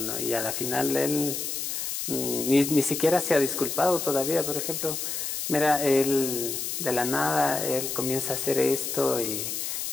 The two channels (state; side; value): noise; left; hiss, 3 dB below the sound